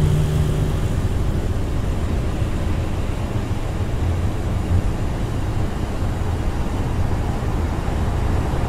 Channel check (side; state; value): both; identical; correlation 1.00